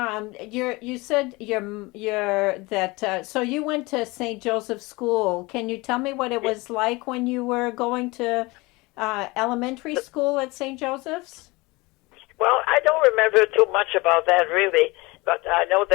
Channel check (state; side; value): quieter; right; 23.6 dB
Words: you said so you went to St. Joseph's School. Can you tell me what it was like when you were going to elementary school at St. Joseph's? Well, I don't remember too much about that really, but I know